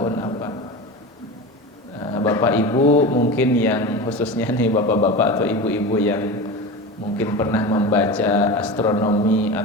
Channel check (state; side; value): normal; both; correlation 0.27